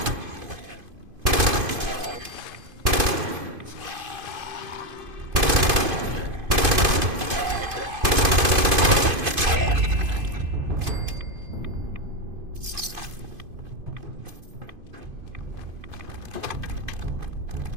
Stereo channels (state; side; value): late; left; 2.5 ms